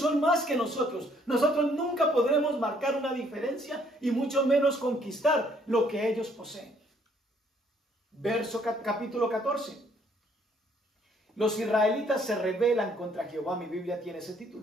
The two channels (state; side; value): normal; both; correlation 0.65